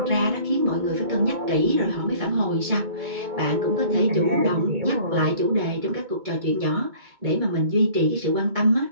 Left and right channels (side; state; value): left; late; 2.2 ms